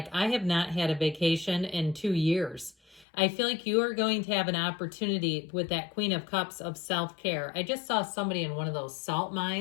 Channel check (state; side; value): drops out; right; at 3.1 s